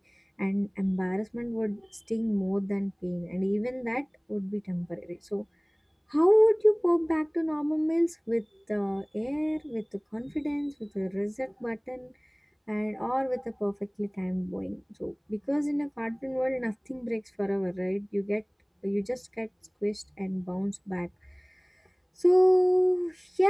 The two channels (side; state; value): both; identical; correlation 1.00